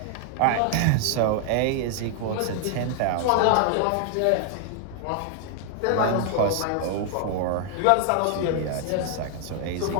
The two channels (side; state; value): both; different; correlation 0.00